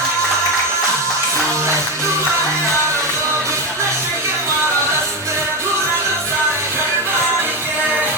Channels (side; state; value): both; normal; correlation 0.15